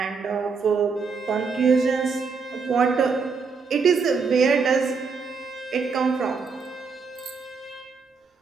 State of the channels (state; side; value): quieter; left; 5.1 dB